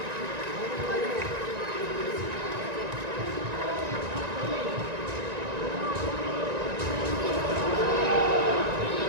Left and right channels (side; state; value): left; late; 1.9 ms